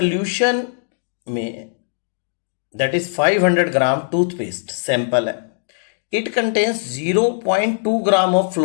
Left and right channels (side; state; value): right; silent; digital silence